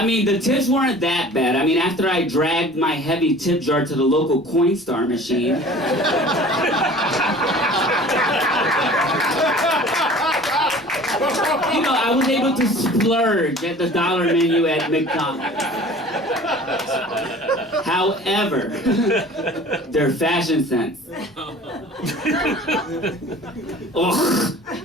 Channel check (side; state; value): both; normal; correlation 0.45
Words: mean, the tips weren't that bad. I mean, after I dragged my heavy tip jar to the local Coinstar machine, you know, I was able to splurge at the dollar menu at McDonald's. However, their fashion sense. Ugh.